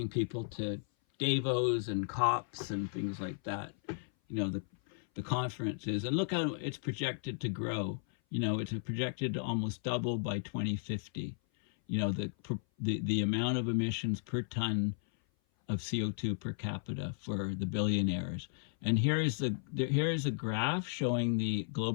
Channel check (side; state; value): right; silent; 55 dB below the other